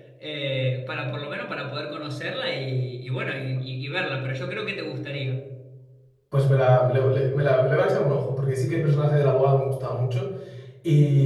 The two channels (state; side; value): identical; both; correlation 1.00